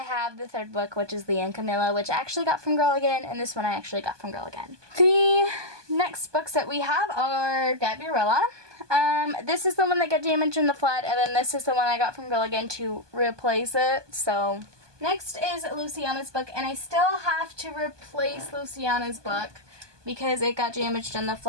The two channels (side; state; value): left; late; 1.2 ms